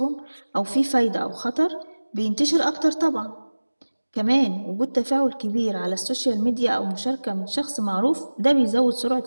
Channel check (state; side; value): inverted; both; correlation -1.00